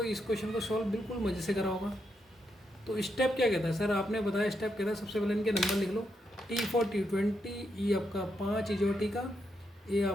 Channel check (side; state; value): both; normal; correlation 0.81